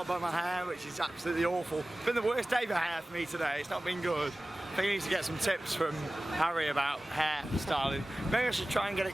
by my hair, which is absolutely awful. It's been the worst day for hair for me today. It's not been good. I think I need to get some tips from Harry about hair styling. Maybe I should try and get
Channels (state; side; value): normal; both; correlation 0.97